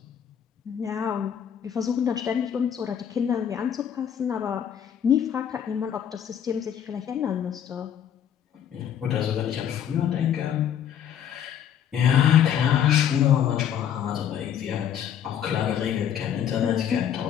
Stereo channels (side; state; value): right; quieter; 9.2 dB